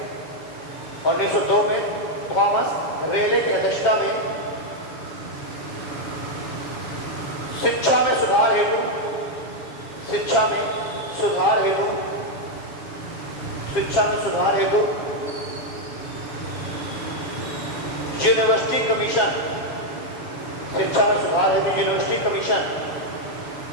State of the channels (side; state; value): right; late; 7.3 ms